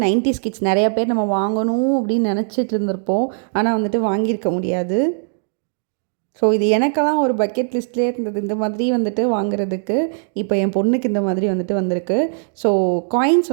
90s கிட்ஸ் நிறையா பேர் நம்ம வாங்கணும் அப்படின்னு நினச்சிட்டு இருந்திருப்போம். ஆனால் வந்துட்டு வாங்கியிருக்க முடியாது. ஸோ இது எனக்கெல்லாம் ஒரு பக்கெட் லிஸ்ட்லேயே இருந்தது இந்த மாதிரி வந்துட்டு வாங்குறதுக்கு. இப்போ என் பொண்ணுக்கு இந்த மாதிரி வந்துட்டு வந்திருக்கு. ஸோ காயின்ஸ்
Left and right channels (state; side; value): silent; left; digital silence